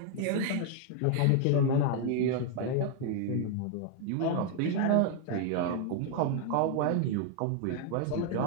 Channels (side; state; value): both; different; correlation 0.00